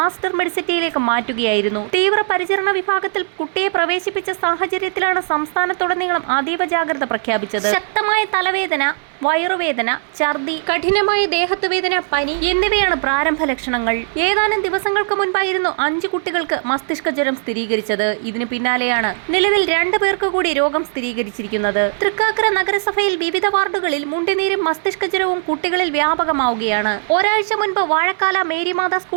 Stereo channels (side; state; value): left; silent; 60 dB below the other